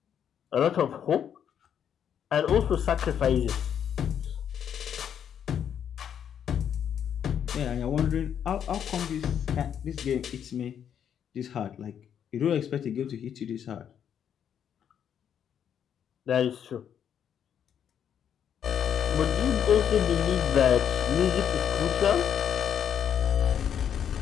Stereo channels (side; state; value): right; quieter; 8.7 dB